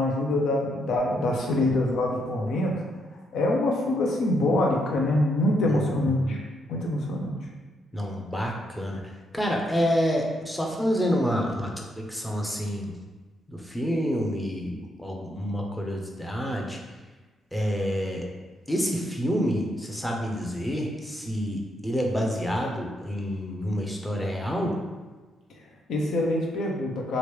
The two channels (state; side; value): normal; both; correlation 0.77